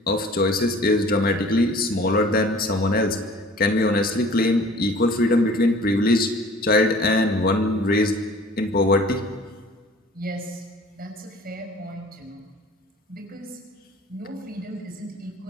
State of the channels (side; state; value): both; normal; correlation 0.48